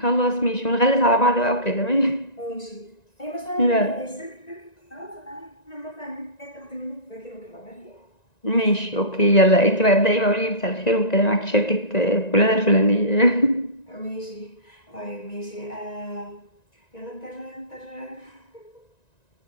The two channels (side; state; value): right; late; 1.9 ms